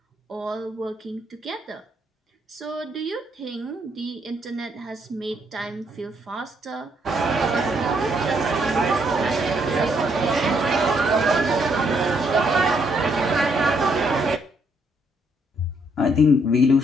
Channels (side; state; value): both; normal; correlation 0.72